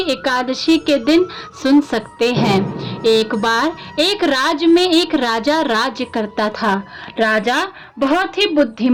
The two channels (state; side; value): identical; both; correlation 1.00